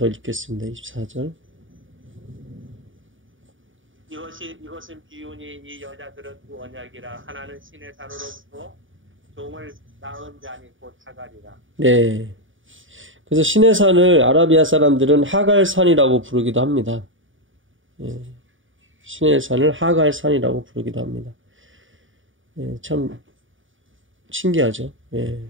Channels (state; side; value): late; left; 0.57 ms